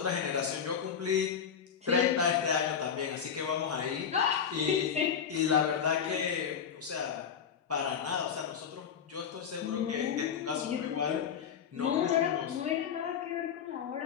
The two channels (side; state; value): right; quieter; 7.6 dB